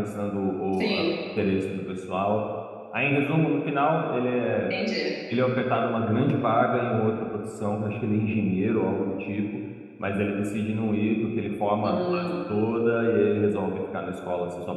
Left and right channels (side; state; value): both; identical; correlation 1.00